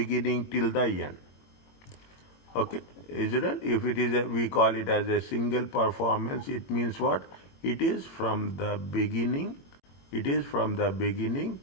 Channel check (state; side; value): late; right; 21 ms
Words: till the end. Okay, is it? If it is we call it as a single performance, it means what? It is from the beginning. It is from the beginning